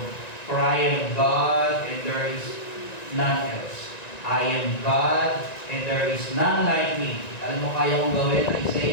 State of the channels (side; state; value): right; late; 1.9 ms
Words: for I am God and there is none else. I am God and there is none like me. Alam mo, kaya kong gawin,